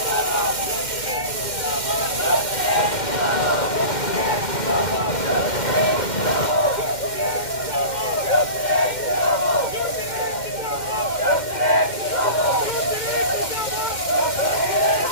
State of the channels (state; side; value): late; right; 2.1 ms